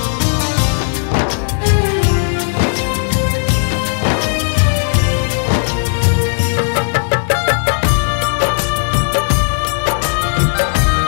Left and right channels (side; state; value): right; silent; digital silence